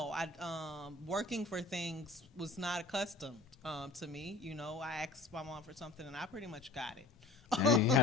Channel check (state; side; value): quieter; right; 3.1 dB